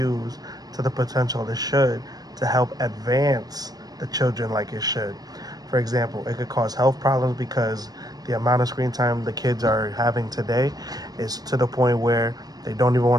to the potential it should to help advance the children like it should. For example, it could cause health problems because the amount of screen time the kids are having today is to the point where they don't even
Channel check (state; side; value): late; left; 0.19 ms